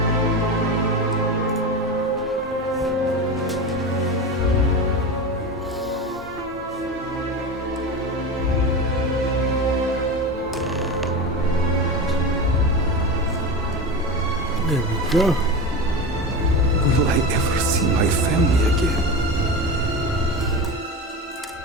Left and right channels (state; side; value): normal; both; correlation 0.23